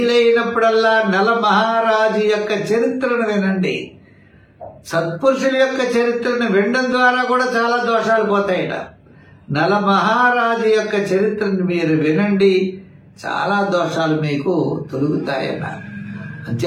నల మహారాజు యొక్క చరిత్రను వినండి. సత్పురుషుల యొక్క చరిత్రను వినడం ద్వారా కూడా చాలా దోషాలు పోతాయట. నల మహారాజు యొక్క చరిత్రను మీరు వినండి, చాలా దోషాలు మీకు తొలుగుతాయన్నారు.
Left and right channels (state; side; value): identical; both; correlation 1.00